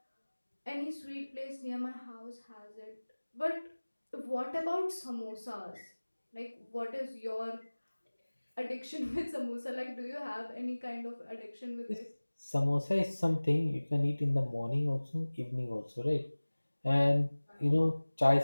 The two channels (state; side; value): inverted; both; correlation -1.00